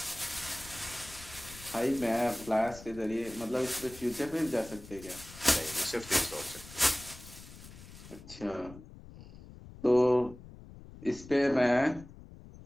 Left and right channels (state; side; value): noise; left; rumble, 17 dB below the sound